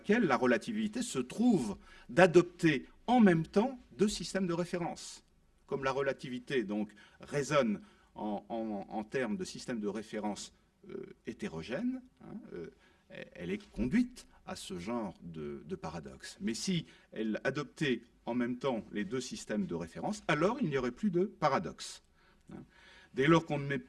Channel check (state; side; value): identical; both; correlation 1.00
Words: la relativité se trouve d'adopter en même temps deux systèmes de référence. Comme la relativité donc résonne en termes de système de référence hétérogène, hein, elle est conduite à ce genre de paradoxe. Mais si elle adoptait en même temps les deux systèmes de référence, alors il n'y aurait plus de paradoxe. Hein. Dès lors qu'on ne met